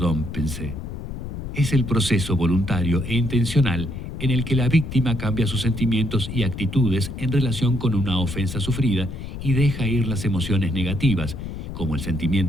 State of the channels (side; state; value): left; noise; rumble, 8 dB below the sound